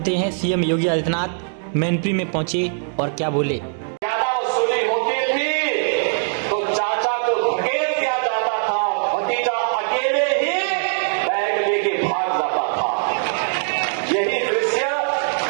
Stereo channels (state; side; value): silent; left; digital silence